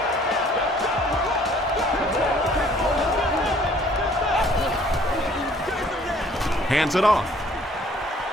Hands it off.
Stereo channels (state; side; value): normal; both; correlation 0.57